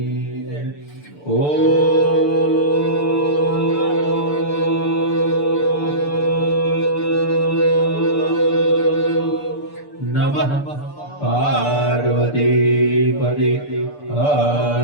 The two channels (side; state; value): right; late; 6.8 ms